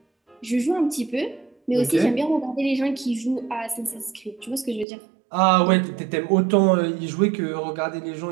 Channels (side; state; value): left; drops out; at 4.9 s